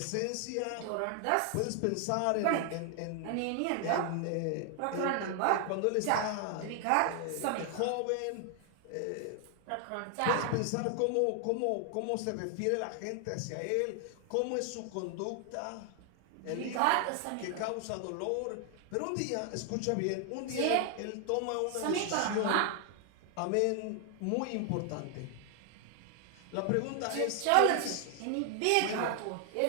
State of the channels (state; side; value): different; both; correlation 0.00